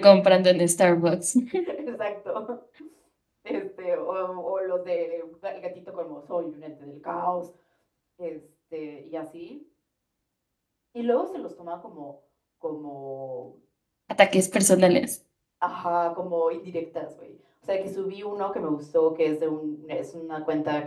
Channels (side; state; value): both; identical; correlation 1.00